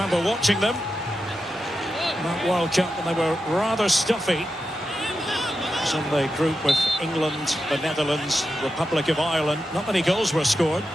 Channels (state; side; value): normal; both; correlation 0.89